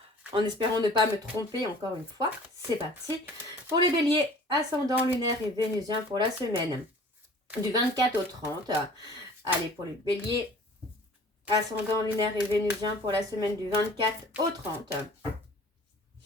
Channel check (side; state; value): both; normal; correlation 0.48